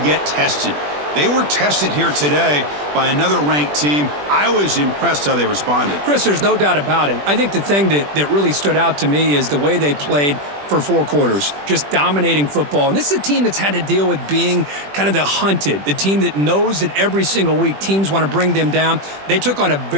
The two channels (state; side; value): late; left; 20 ms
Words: get tested. They were tested here today by another ranked team. I was impressed how they responded. Chris, there's no doubt about it. I think the thing that really stood out to me is the way they played for 4 quarters, just dominating football. And this is a team that's had to deal with being kind of the hunted, the team that knows that every single week teams want to bring them down. They took on a